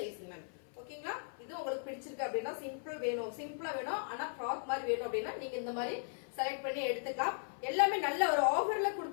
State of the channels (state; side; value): silent; right; 53 dB below the other